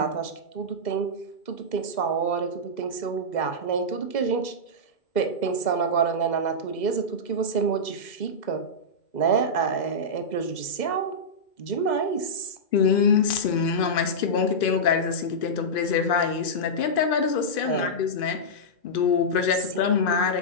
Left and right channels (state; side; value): late; right; 2.5 ms